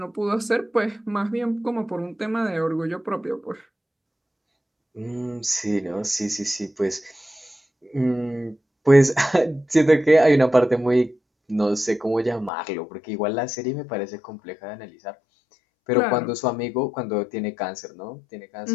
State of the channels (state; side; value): drops out; right; at 12.5 s